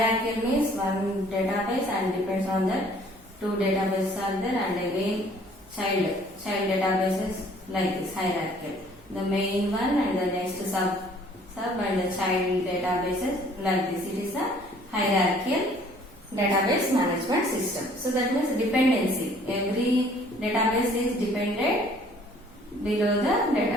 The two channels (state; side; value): normal; both; correlation 0.57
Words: means one database and depends on that two databases are there, and again child databases like this hierarchical. The main one and the next sub and the child databases like this. It is a hierarchical database management system. So that means dependency. Every database is dependent below the